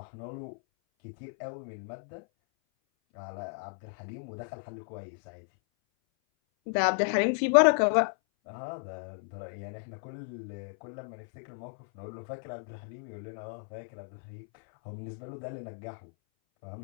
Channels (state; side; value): silent; right; 56 dB below the other